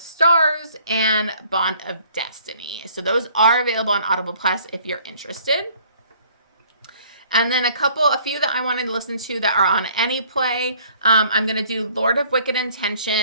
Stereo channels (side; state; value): both; inverted; correlation -0.58